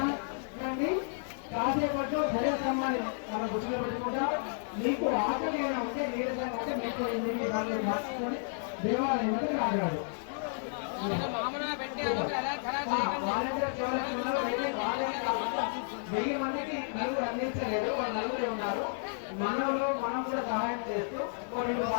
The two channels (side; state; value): right; silent; digital silence